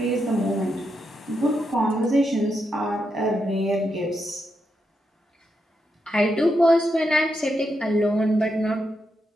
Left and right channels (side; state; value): both; normal; correlation 0.83